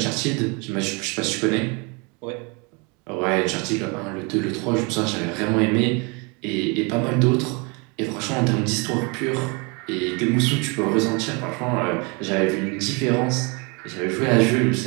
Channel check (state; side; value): quieter; left; 30.9 dB